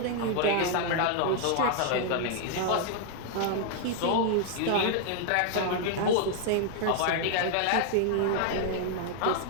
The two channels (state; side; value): different; both; correlation 0.00